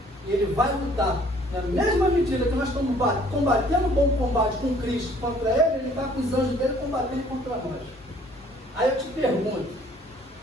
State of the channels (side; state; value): both; normal; correlation 0.58